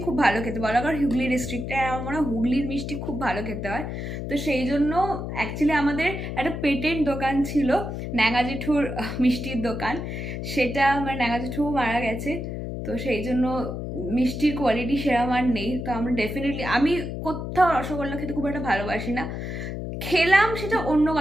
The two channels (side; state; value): left; noise; hum, 5 dB below the sound